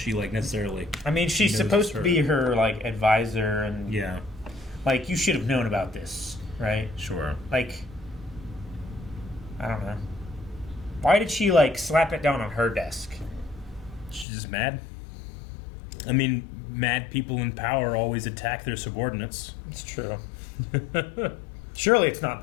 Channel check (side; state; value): right; drops out; at 14.2 s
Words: necessarily. I mean, she's knows supposed it's to her. be her, like, advisor, and, Yeah, like, you should have known about this, right? sure. Like, I don't know. Why did she, like, slap it down on her desk? She's just mad. I mean, mad people in power always attack their subordinates. It's true. Surely it's not